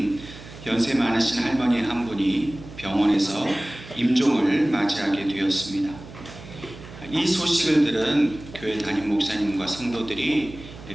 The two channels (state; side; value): noise; right; hum, 16 dB below the sound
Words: 연세 많으신 할머니 한 분이 병원에서 임종을 맞이하게 되었습니다. 이 소식을 들은 교회 담임 목사님과 성도들이